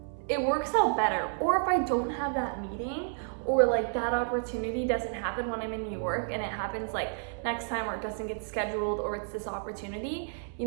it works out better. Or if I don't have that meeting, or like that opportunity doesn't happen when I'm in New York, and it happens like next time, or it doesn't get scheduled, or it's this opportunity, you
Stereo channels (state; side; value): silent; left; 57 dB below the other